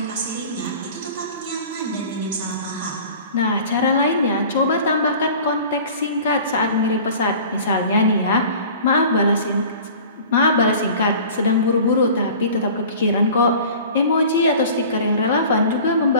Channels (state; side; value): inverted; both; correlation -0.43